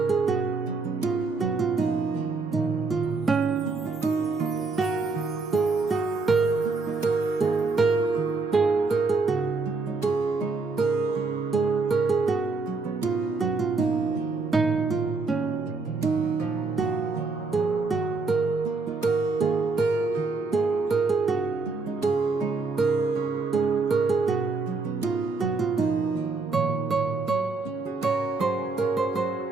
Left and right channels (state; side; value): quieter; left; 4.0 dB